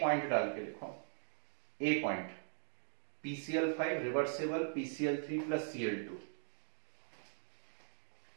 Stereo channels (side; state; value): left; silent; digital silence